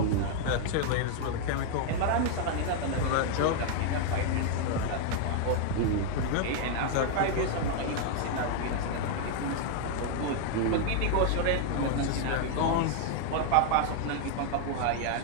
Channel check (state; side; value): different; both; correlation 0.00